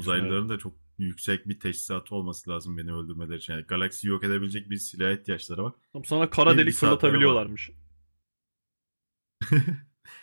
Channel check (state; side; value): inverted; both; correlation -1.00